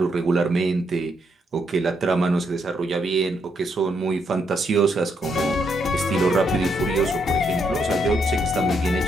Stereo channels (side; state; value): both; normal; correlation 0.77